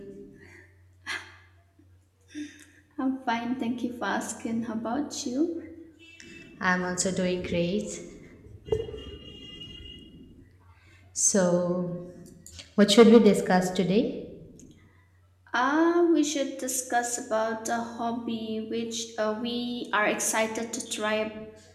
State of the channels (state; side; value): identical; both; correlation 1.00